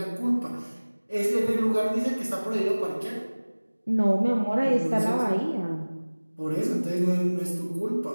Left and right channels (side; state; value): both; inverted; correlation -1.00